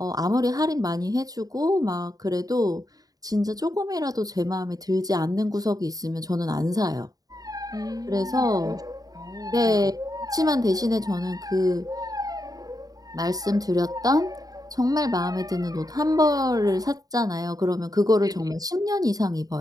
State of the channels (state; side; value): late; left; 0.18 ms